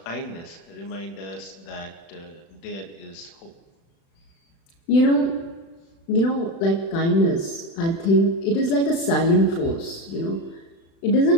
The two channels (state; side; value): late; right; 36 ms